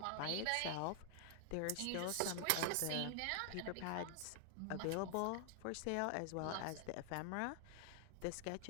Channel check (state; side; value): different; both; correlation 0.00